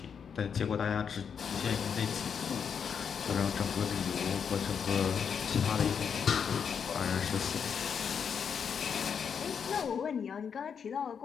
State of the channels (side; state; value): right; quieter; 7.0 dB